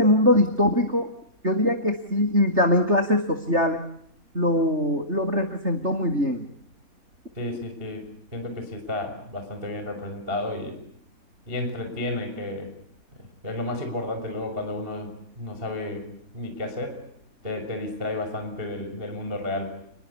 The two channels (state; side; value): late; left; 3.3 ms